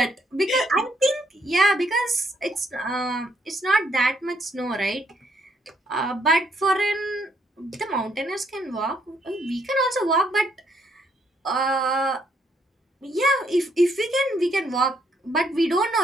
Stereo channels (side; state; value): both; normal; correlation 0.71